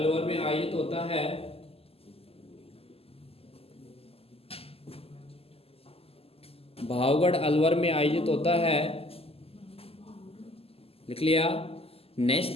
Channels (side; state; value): right; late; 0.28 ms